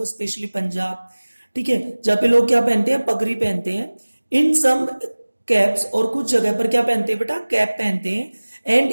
स्पेशली पंजाब, ठीक है, जहां पे लोग क्या पहनते हैं? पगड़ी पहनते हैं. इन सम कैप्स, और कुछ जगह पर क्या पहनते हैं बेटा? कैप पहनते हैं. And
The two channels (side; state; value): both; inverted; correlation -1.00